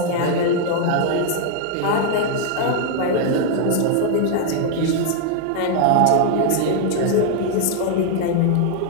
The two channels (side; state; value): both; different; correlation 0.00